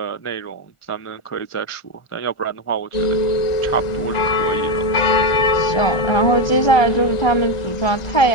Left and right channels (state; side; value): late; right; 1.4 ms